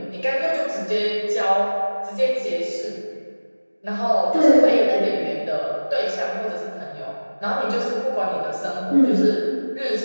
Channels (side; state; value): both; inverted; correlation -1.00